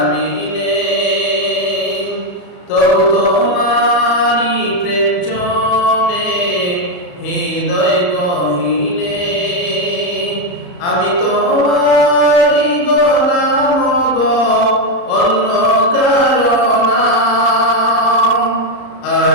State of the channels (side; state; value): right; late; 34 ms